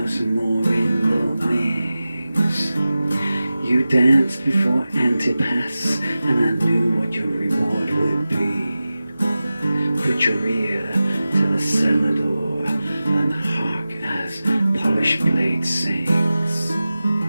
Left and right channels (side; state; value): both; inverted; correlation -0.95